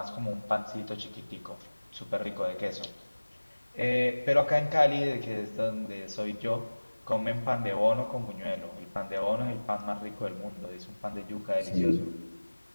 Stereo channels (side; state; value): both; inverted; correlation -1.00